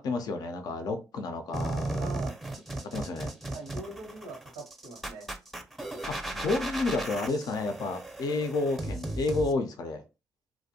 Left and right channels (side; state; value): both; normal; correlation 0.71